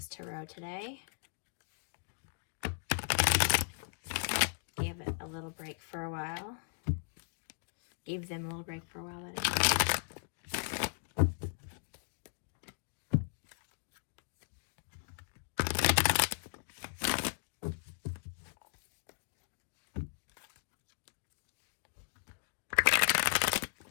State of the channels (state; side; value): silent; right; digital silence